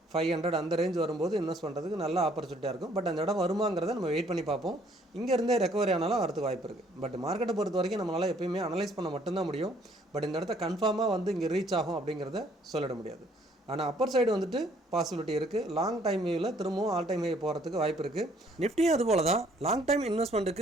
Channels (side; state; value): both; normal; correlation 0.62